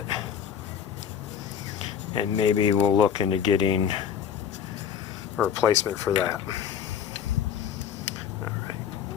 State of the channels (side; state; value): right; quieter; 8.3 dB